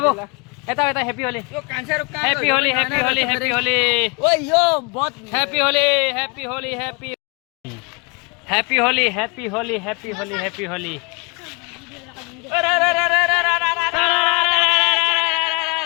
एता एता हैप्पी होली यो कांचा रुक happy Holi happy Holi happy Holi ओए यो बहुत happy Holi happy Holi happy happy Holi happy Holi happy Holi happy Holi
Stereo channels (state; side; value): quieter; right; 31.3 dB